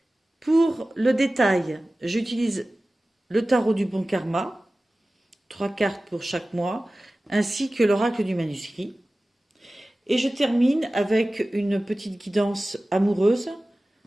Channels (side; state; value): both; normal; correlation 0.97